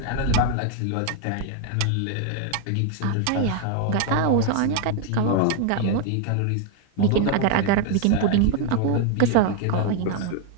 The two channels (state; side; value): different; both; correlation 0.00